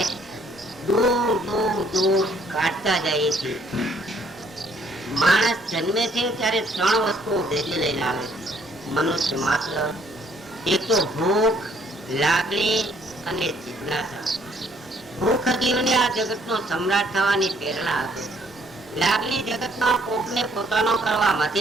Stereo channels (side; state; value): both; normal; correlation 0.65